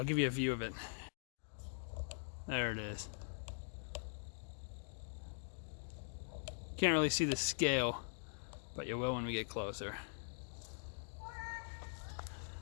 give you a view of it. There it is. Can't really see the scale, but you will when we get closer.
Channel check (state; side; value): silent; right; digital silence